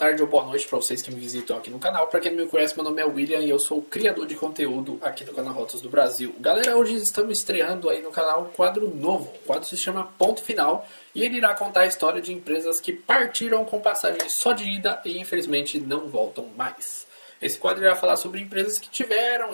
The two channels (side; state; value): both; inverted; correlation -1.00